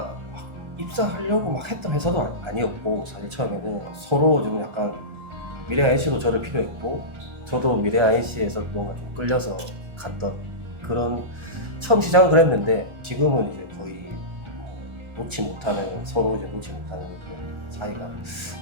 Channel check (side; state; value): left; late; 1.3 ms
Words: 막 입사하려고 막 했던 회사도 아니었고 사실 처음에는 서로 좀 약간 미래 INC도 저를 필요했고 저도 미래 INC에서 뭔가 좀 끌려서 갔던 그런 처음 시작은 그랬는데 지금은 이제 거의 놓지 못하는 서로 이제 놓지 못하는 그런 사이가